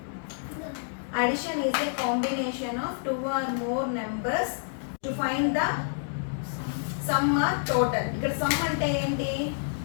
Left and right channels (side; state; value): right; silent; digital silence